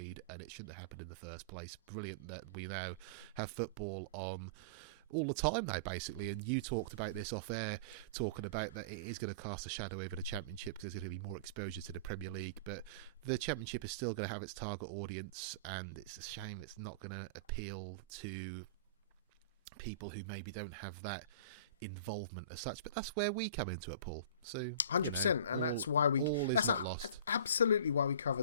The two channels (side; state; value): both; inverted; correlation -0.36